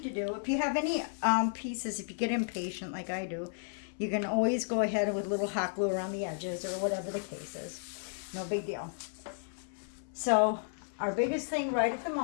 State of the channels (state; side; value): silent; right; 56 dB below the other